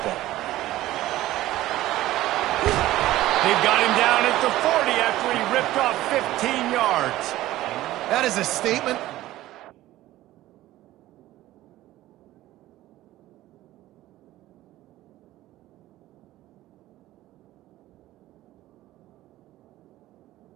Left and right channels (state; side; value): quieter; left; 15.6 dB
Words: They've got him down at the 40 after he ripped off 15 yards. That is a statement.